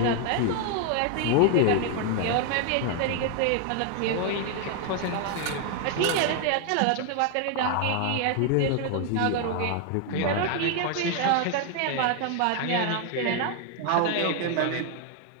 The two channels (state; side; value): different; both; correlation 0.00